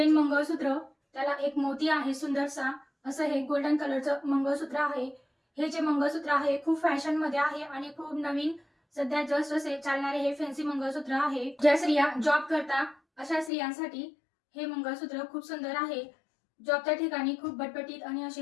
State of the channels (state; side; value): drops out; right; at 13.5 s